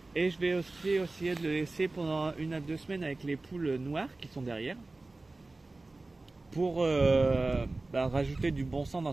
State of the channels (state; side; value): quieter; left; 3.2 dB